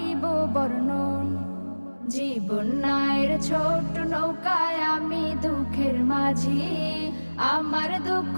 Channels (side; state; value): both; inverted; correlation -1.00